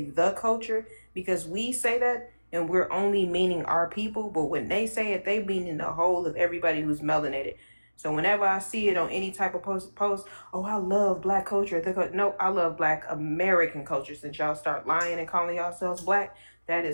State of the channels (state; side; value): inverted; both; correlation -1.00